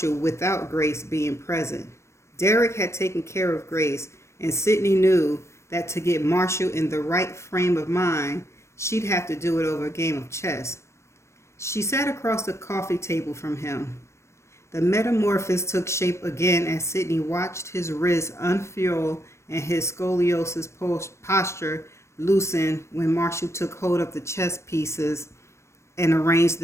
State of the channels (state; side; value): late; right; 0.13 ms